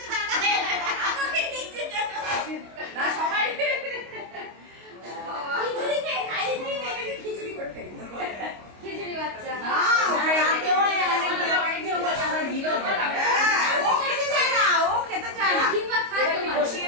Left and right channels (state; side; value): late; left; 25 ms